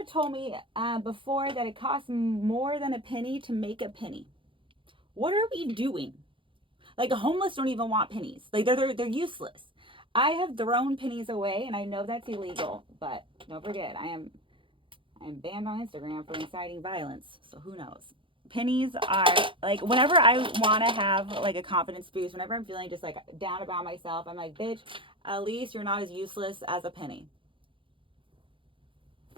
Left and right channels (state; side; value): late; left; 0.25 ms